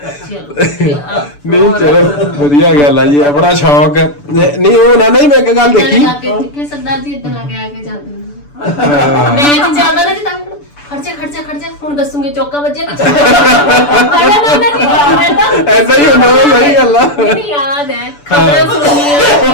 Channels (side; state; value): right; late; 6.9 ms